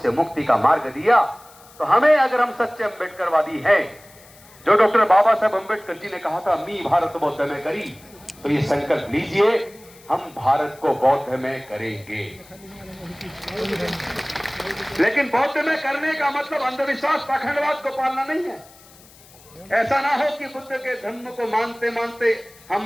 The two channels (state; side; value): noise; left; hiss, 24 dB below the sound